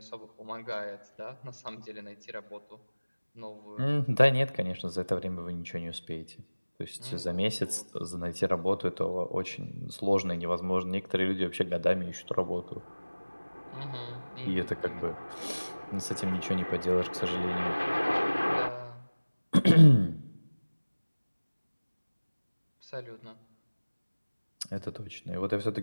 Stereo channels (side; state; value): both; inverted; correlation -1.00